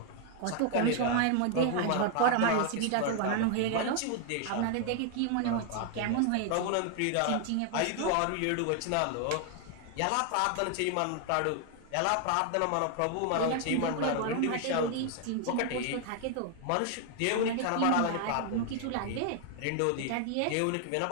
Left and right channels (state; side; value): different; both; correlation 0.00